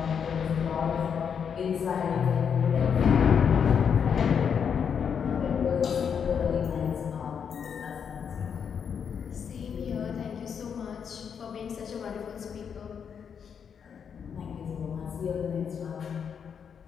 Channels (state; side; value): quieter; right; 7.2 dB